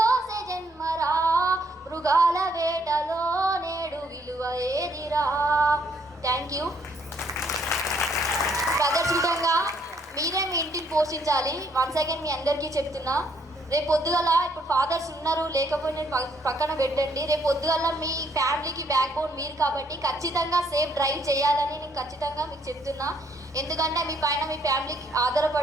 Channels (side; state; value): both; normal; correlation 0.69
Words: జన్మరా, మృగాల వేటలో నేడు విలువ ఏదిరా. Thank you brothers. విధంగా మీరే మీ ఇంటిని పోషించాలి. వన్స్ అగైన్ మీ అందరికీ చెప్తున్నా, రేపు పొద్దుగల ఇప్పుడు ఫాదర్స్ ఉన్నారు లేకపోయినా పక్కన పెట్టండి. రేపు పొద్దుగల మీ ఫ్యామిలీకి బ్యాక్ బోన్ మీరు కాబట్టి ఖచ్చితంగా సేఫ్ డ్రైవ్ చేయాలని నేను ఖచ్చితంగా మీకు చెప్తున్నా. ఎందుకంటే మీ పైన మీ ఫ్యామిలీకి